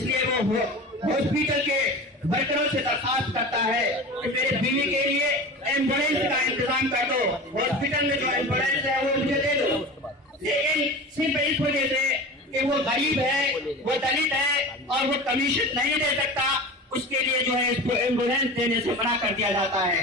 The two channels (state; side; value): normal; both; correlation 0.33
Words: वो हॉस्पिटल के वर्करों से दरखास्त करता है कि मेरे बीवी के लिए एम्बुलेंस का इंतजाम कर दो, हॉस्पिटल में जो एम्बुलेंस है वो मुझे दे दो। लेकिन सिर्फ इस वजह से कि वो गरीब है, वो दलित है और वो कमीशन नहीं दे सकता, उसके लिए जो है इसको एम्बुलेंस देने से मना कर दिया जाता है।